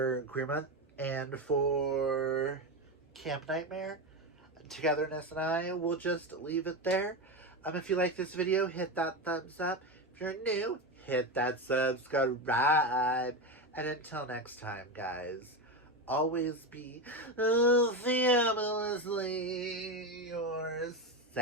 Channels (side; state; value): both; normal; correlation 0.16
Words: Queer Month and for Camp Nightmare. Togetherness and I will just leave it there. If you like this video, hit that thumbs up. If you're new, hit that subscribe. And until next time, guys, always be fabulously